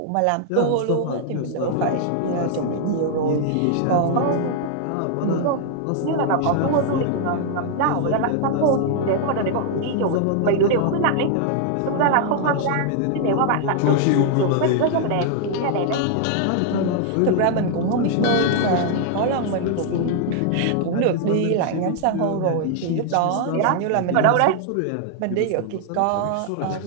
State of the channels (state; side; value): different; both; correlation 0.00